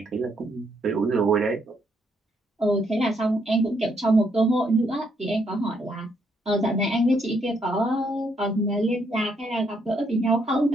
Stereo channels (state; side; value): normal; both; correlation 0.74